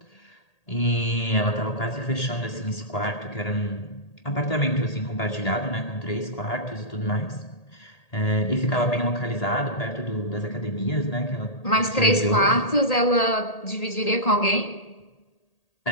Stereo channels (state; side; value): late; right; 1.8 ms